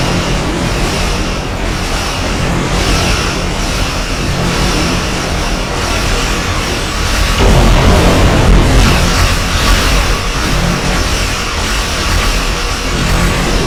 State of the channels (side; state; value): both; identical; correlation 1.00